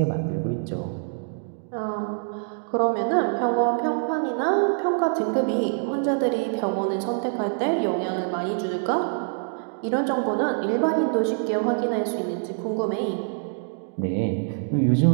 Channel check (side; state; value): left; silent; digital silence